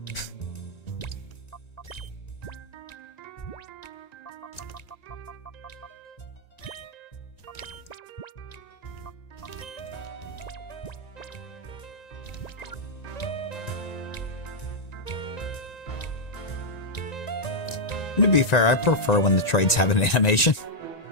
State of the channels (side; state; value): right; late; 1.9 ms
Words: To be fair, I prefer when the trades have an animation.